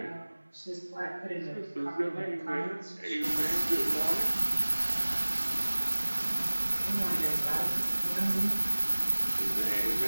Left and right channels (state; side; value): inverted; both; correlation -1.00